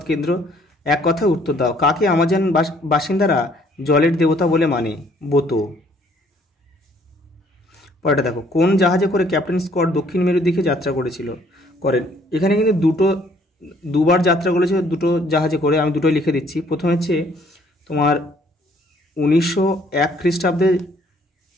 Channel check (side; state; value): both; normal; correlation 0.62